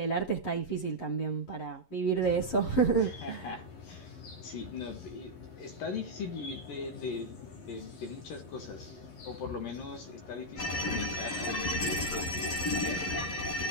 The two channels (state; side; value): late; right; 11 ms